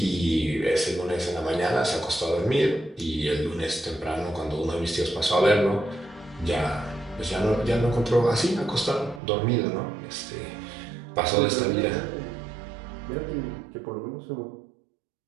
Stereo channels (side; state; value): left; drops out; at 9.2 s